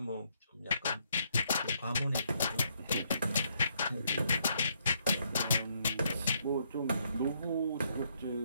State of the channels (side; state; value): both; inverted; correlation -0.73